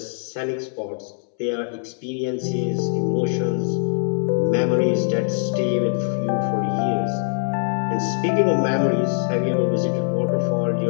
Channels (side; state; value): right; silent; 64 dB below the other